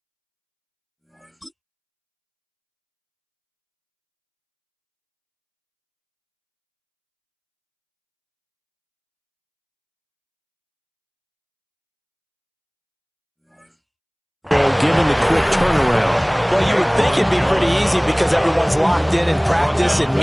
given the quick turnaround? Well, you would think it'd be pretty easy because everyone's locked in practice and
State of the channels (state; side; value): identical; both; correlation 1.00